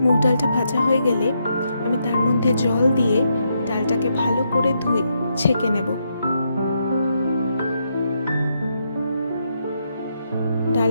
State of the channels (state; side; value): inverted; both; correlation -0.79